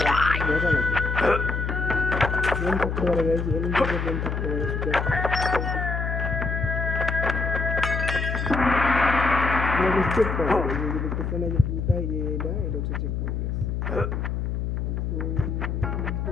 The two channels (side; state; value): left; noise; hum, 2 dB below the sound